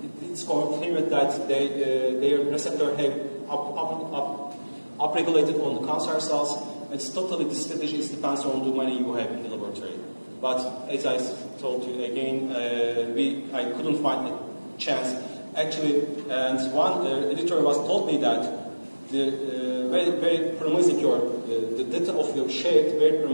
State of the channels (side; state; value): both; inverted; correlation -1.00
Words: confirmed that their receptor have upregulated on the cancer cells. It's totally, this strategy depends on the money you have in the laboratory. But as I told you again, I couldn't find a chance. Actually, and one editor told me that the very, very promising the data of your shape, very